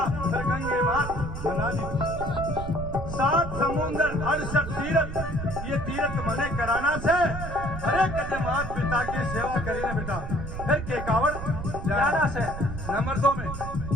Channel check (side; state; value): right; noise; rumble, 7 dB below the sound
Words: फिर गंगे मात मना ली। सात समुंदर 68 तीरथ ये तीरथ मने कराना से। अरे कदे मात पिता की सेवा करी ना बेटा फिर के कावड़ जाना से। नंबर 2 में